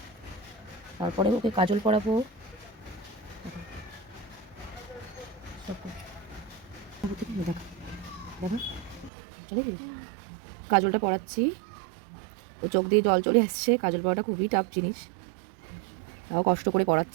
তারপরে ওকে কাজল পরাবো। কাজলটা পরাচ্ছি, ও চোখ দিয়ে জল চলে আসছে। কাজল পরাটা খুবই টাফ জিনিস, তাও কষ্ট করে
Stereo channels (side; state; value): left; drops out; at 9.1 s